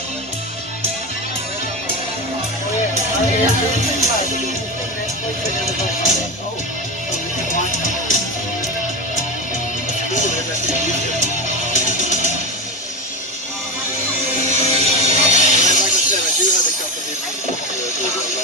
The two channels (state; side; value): normal; both; correlation 0.20